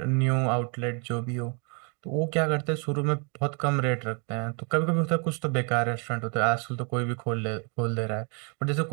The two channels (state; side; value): quieter; left; 36.3 dB